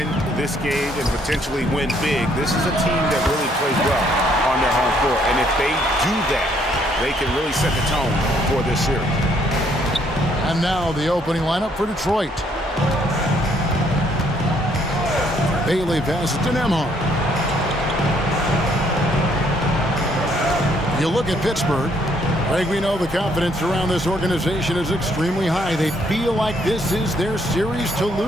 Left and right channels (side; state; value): both; normal; correlation 0.68